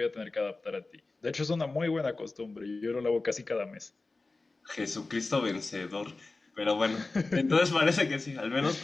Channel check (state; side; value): quieter; right; 3.5 dB